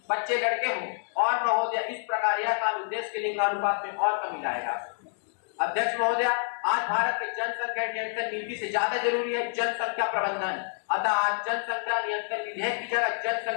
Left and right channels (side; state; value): right; silent; 59 dB below the other